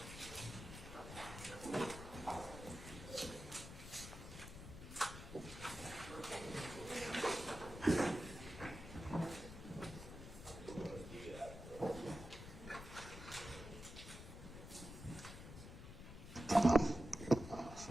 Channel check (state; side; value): noise; left; rumble, 12 dB below the sound